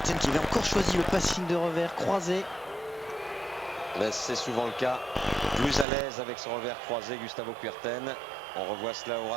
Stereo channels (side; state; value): left; drops out; at 5.9 s